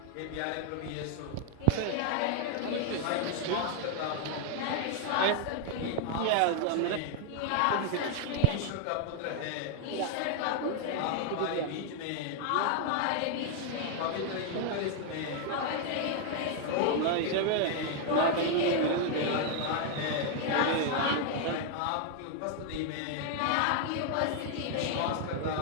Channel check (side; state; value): both; different; correlation 0.00